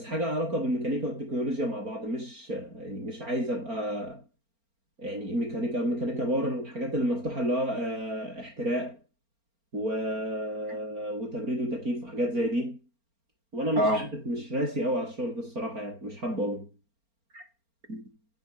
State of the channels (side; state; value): left; late; 4.4 ms